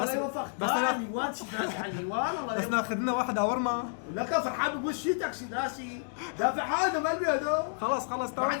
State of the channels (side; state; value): right; silent; digital silence